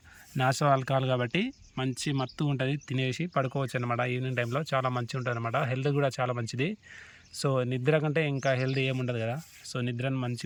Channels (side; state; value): both; identical; correlation 1.00